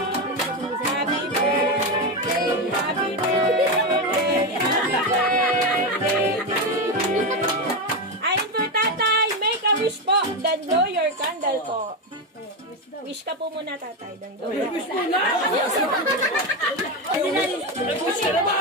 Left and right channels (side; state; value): both; normal; correlation 0.12